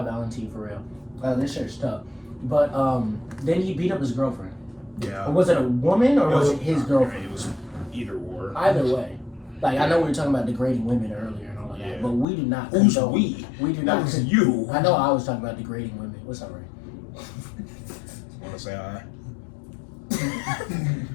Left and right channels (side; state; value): right; drops out; at 12.2 s